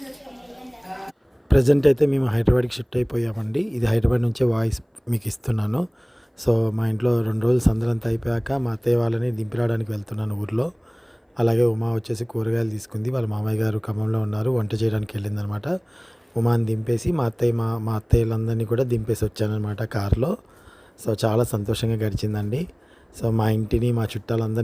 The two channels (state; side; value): identical; both; correlation 1.00